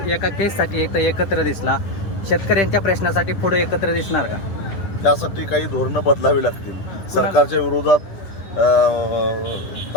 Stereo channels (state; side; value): late; right; 10 ms